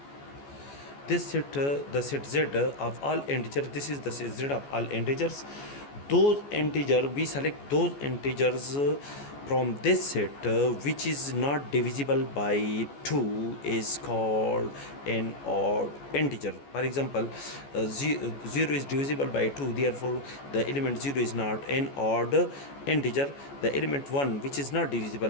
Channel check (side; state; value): right; late; 14 ms